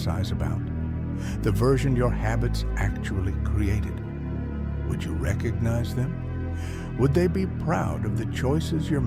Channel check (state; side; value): identical; both; correlation 1.00